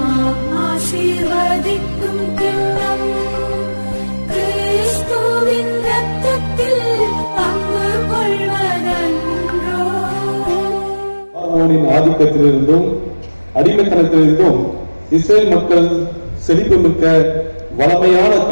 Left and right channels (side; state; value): both; inverted; correlation -1.00